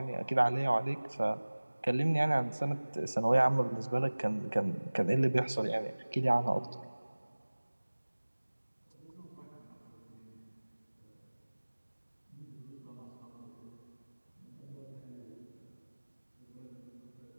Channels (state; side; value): inverted; both; correlation -1.00